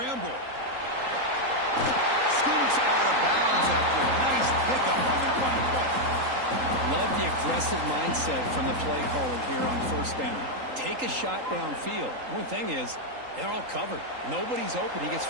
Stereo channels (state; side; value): late; left; 3.8 ms